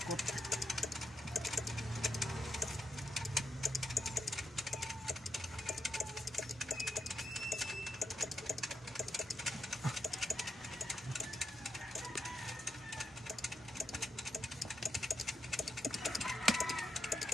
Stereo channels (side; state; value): both; normal; correlation 0.85